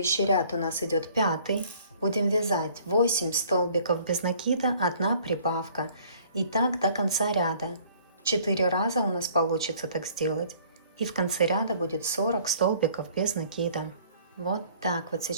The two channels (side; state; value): both; inverted; correlation -0.56